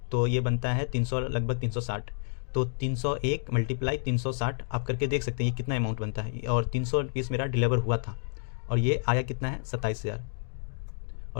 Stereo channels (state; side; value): silent; right; digital silence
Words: तो ये बनता है 300, लगभग 360। तो 301 मल्टीप्लाई 360 आप करके देख सकते हैं ये कितना अमाउंट बनता है। और 300 पीस मेरा डिलीवर हुआ था, और ये आया कितना है? 27,000।